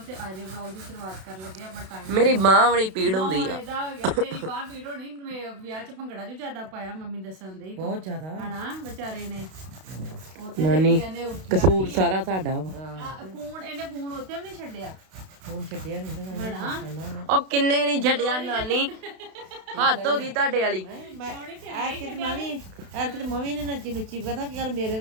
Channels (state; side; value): late; left; 32 ms